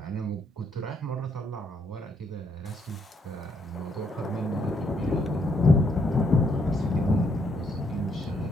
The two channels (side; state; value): both; normal; correlation 0.73